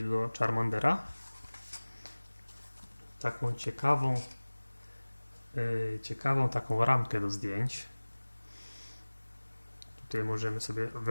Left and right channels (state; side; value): inverted; both; correlation -1.00